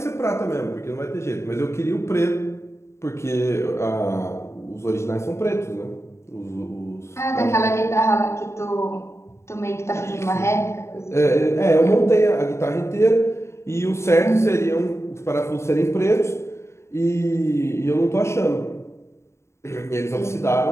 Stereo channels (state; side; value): late; right; 0.13 ms